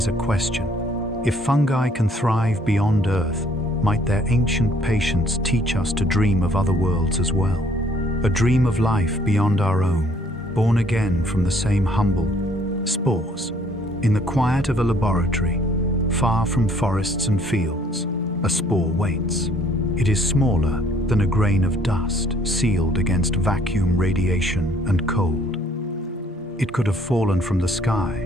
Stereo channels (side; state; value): both; normal; correlation 0.61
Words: a question. If fungi can thrive beyond Earth, might their ancient patience teach us to dream of other worlds as well? A dream of life beyond our own, born again from the same humble spores. In the quiet of a laboratory, far from forests and fields, a spore waits. It is smaller than a grain of dust, sealed against vacuum, radiation, and cold. It could have fallen from the